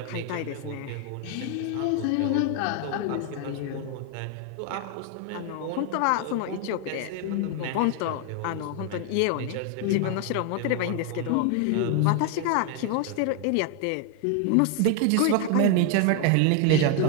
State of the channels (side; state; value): both; different; correlation 0.01